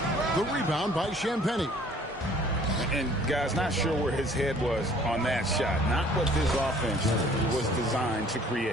The rebound by Champagnie. And guys, not sure where his head was on that shot. Not what this offense was designed to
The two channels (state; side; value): normal; both; correlation 0.55